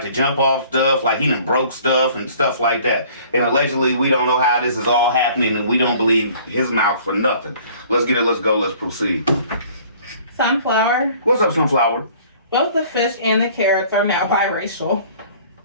to jump off stuff, like he done broke stuff and stuff like that. And allegedly, we don't know how this is all happening, and we don't believe his mouth for nothing. Let's get it. Let's go. Let's proceed. Sunflower. What's up, Sunflower? Both the fish and the carrots are now biracial.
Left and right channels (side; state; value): both; inverted; correlation -0.52